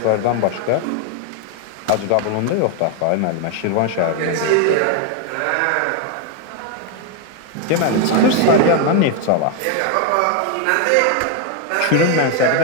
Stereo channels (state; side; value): different; both; correlation 0.01